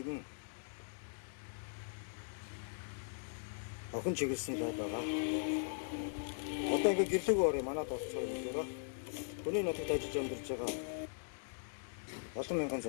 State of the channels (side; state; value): right; silent; digital silence